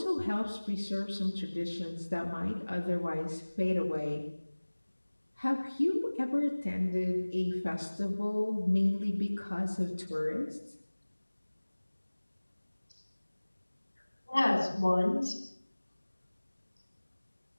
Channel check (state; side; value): inverted; both; correlation -1.00